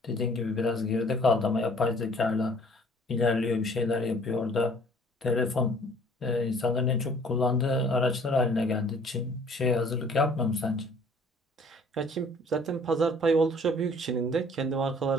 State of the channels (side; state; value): both; normal; correlation 0.55